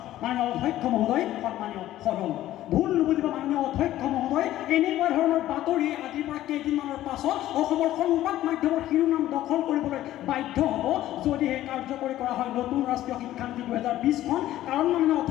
মাননীয় অধ্যক্ষ মহোদয়, সন্মানীয় সদন। ভুল নুবুজিব মাননীয় অধ্যক্ষ মহোদয়, এনেকুৱা ধৰণৰ বাতৰি আজিৰ পৰা কেইদিনমানৰ পাছত অসমৰ সংবাদ মাধ্যমৰ শিৰোনাম দখল কৰিবলৈ বাধ্য হ'ব যদিহে কাৰ্যকৰী কৰা হয় নতুন ৰাষ্ট্ৰীয় শিক্ষানীতি 2020খন। কাৰণ মাননীয়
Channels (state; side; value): quieter; right; 14.0 dB